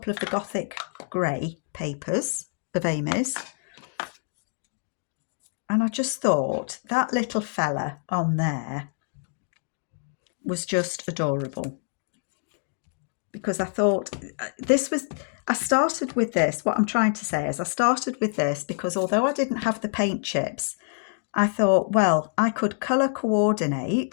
of the Gothic grey papers of Amy's. And I just thought that little fella on there was just adorable. Because I thought I started with this. What I'm trying to say is I started with this because although I didn't have the paint chips, I thought, well, I could colour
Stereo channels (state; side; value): silent; right; 61 dB below the other